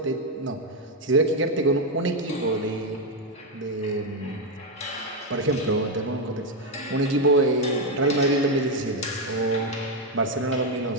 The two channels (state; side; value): normal; both; correlation 0.05